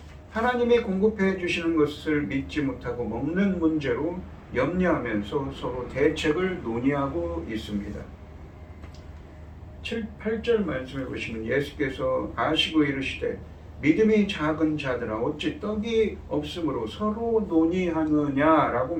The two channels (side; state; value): both; identical; correlation 1.00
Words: 하나님이 공급해 주시는 것을 믿지 못하고 먹는 문제로 염려하면서 서로 대책을 논의하고 있습니다. 8절 말씀해 보시면 예수께서 아시고 이르시되 믿음이 작은 자들아 어찌 떡이 없으므로 서로 논의하느냐라고